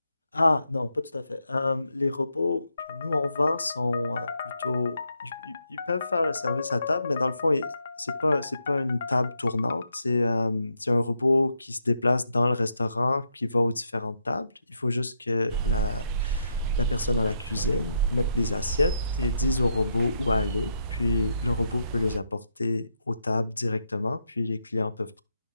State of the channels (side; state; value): both; inverted; correlation -0.80